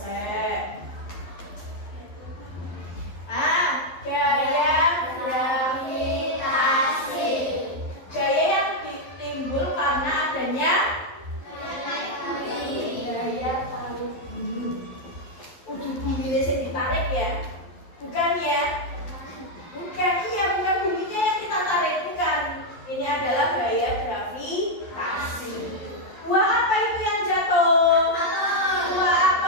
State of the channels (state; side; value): late; right; 11 ms